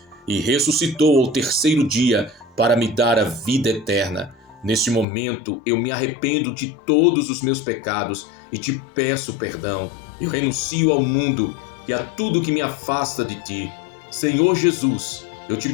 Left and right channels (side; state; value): right; drops out; at 5.1 s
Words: e ressuscitou ao terceiro dia para me dar a vida eterna. Neste momento eu me arrependo de todos os meus pecados e te peço perdão. Eu renuncio ao mundo e a tudo que me afasta de ti. Senhor Jesus, eu te